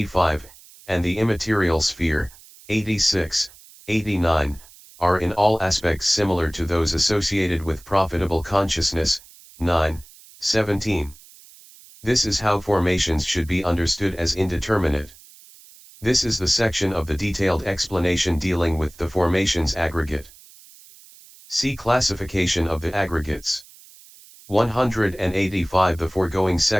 and the immaterial sphere, 86, 89, are in all aspects similar to those associated with profitable consciousness, 9, 17. This is how formations should be understood as indeterminate. This is the section of the detailed explanation dealing with the formations aggregate. See classification of the aggregates. 185. The foregoing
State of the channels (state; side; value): noise; right; hiss, 23 dB below the sound